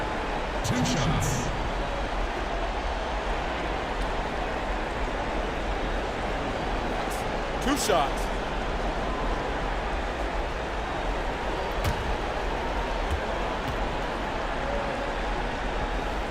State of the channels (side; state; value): both; identical; correlation 1.00